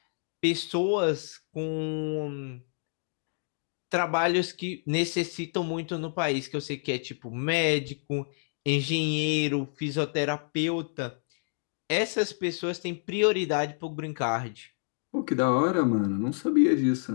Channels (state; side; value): silent; right; digital silence